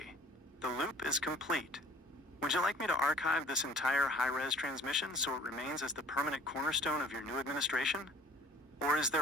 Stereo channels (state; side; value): normal; both; correlation 0.52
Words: The loop is complete. Would you like me to archive this entire high-res transmission so it remains as the permanent cornerstone of your new administration? Or is